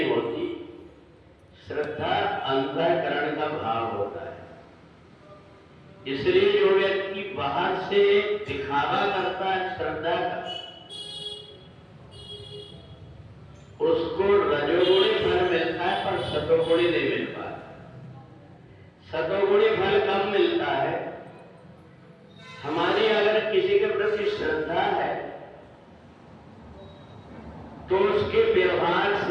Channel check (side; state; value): both; identical; correlation 1.00